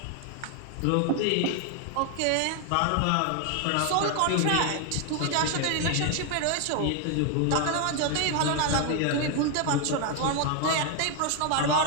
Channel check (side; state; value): both; different; correlation 0.01